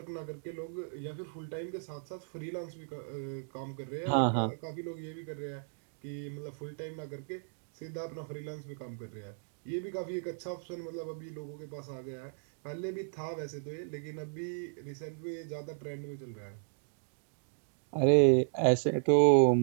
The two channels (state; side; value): silent; left; digital silence